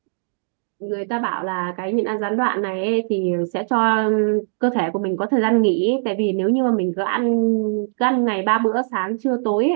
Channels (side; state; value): left; silent; digital silence